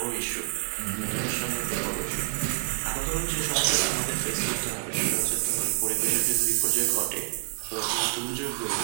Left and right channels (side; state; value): left; silent; digital silence